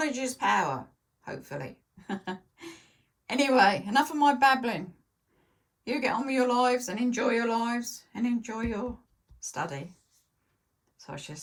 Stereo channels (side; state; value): both; identical; correlation 1.00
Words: is power, hopefully. Anyway, enough of my babbling. You get on with your lives and enjoy your lives and enjoy your study. So I should